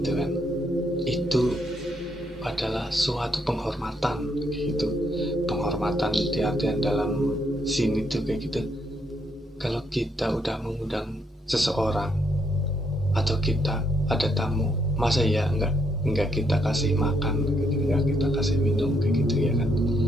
kan. Itu adalah suatu penghormatan kayak gitu. Penghormatan di artian dalam sini tuh kayak gitu. Kalau kita udah mengundang seseorang atau kita ada tamu, masa ya enggak kita kasih makan, enggak kita kasih minum kayak gitu ya kan.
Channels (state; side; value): normal; both; correlation 0.74